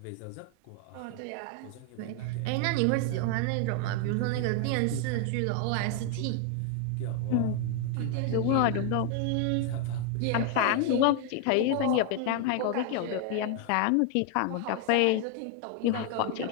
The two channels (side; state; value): both; different; correlation 0.00